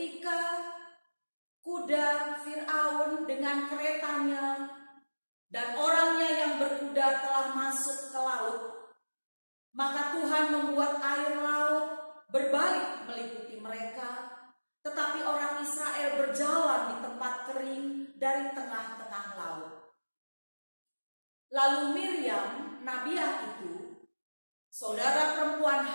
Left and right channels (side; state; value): both; inverted; correlation -1.00